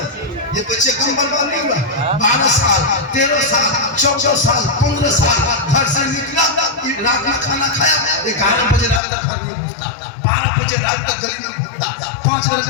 ये बच्चे कम बर्बाद नहीं हुआ, 12 साल, 13 साल, 14 साल, 15 साल घर से निकला, रात में खाना खाया, 11 बजे रात तक घर में घूमता, 12 बजे रात तक गली में घूमता, 5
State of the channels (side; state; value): right; drops out; at 9.0 s